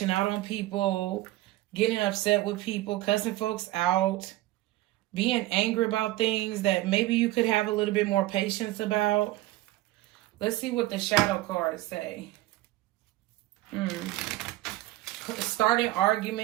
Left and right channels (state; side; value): quieter; left; 17.1 dB